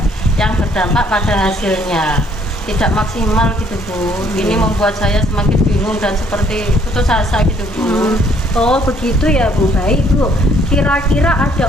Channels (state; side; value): normal; both; correlation 0.64